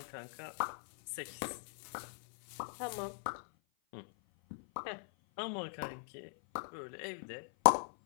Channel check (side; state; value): right; silent; 51 dB below the other